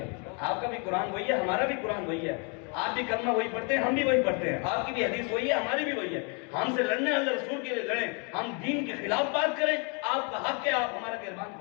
آپ کا بھی قرآن وہی ہے، ہمارا بھی قرآن وہی ہے، آپ بھی کلمہ وہی پڑھتے ہیں، ہم بھی وہی پڑھتے ہیں، آپ کی بھی حدیث وہی ہے، ہماری بھی وہی ہے، ہم سے لڑنے اللہ رسول کے لیے لڑیں، ہم دین کے خلاف بات کریں، آپ کا حق ہے آپ ہمارا گربان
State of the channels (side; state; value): right; quieter; 35.3 dB